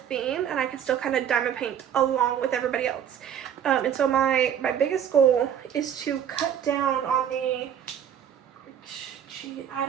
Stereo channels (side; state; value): left; quieter; 9.1 dB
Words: and I can still kind of diamond paint along with everybody else. And so my biggest goal is to cut down on the, I